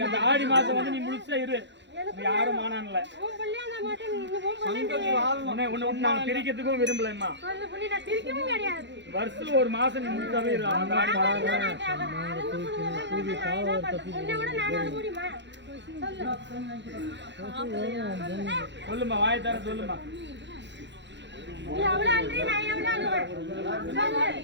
அந்த ஆடி மாசம் வந்து நீ முழுசா இரு நீ யாரும் மானான்ல நான் பிரிக்கிறதுக்கும் விரும்பலம்மா வருஷத்துல ஒரு மாசம் நீ முழுசாவே இரு அந்த ஆடி சொல்லுமா வாயை தர சொல்லுமா நீ எவ்வளவு அழுறி நான் எவ்வளவு அழுவேன்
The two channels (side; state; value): left; late; 0.52 ms